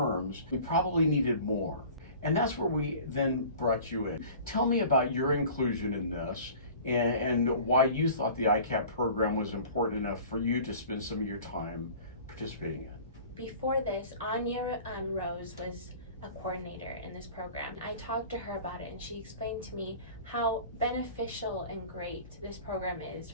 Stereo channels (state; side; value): inverted; both; correlation -0.43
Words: we probably needed more. And that's where we then brought you in. Tell me about your inclusion in this and why you thought the EICAP program was important enough for you to spend some of your time participating in. Before this, Anya Rose was a coordinator in this program. I talked to her about it and she explained to me how beneficial and great this program is